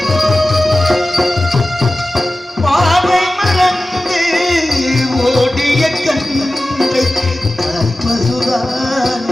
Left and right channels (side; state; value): both; normal; correlation 0.95